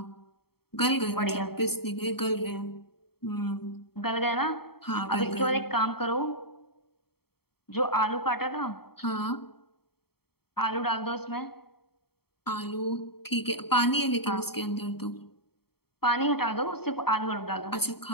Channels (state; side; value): late; right; 0.95 ms